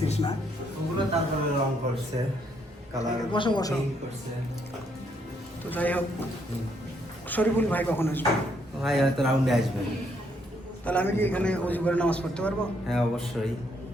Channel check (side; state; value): both; normal; correlation 0.72